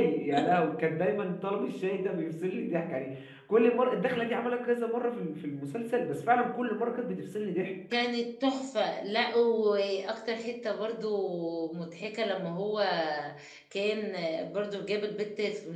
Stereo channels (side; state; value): both; identical; correlation 1.00